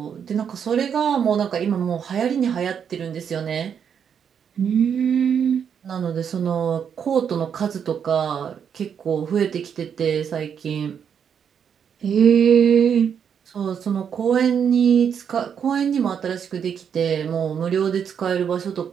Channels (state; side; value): quieter; left; 7.7 dB